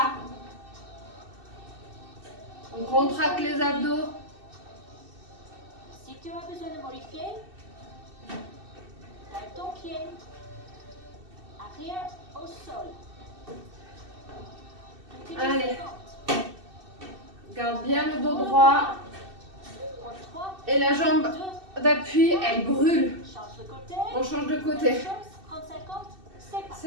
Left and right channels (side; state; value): left; late; 2.6 ms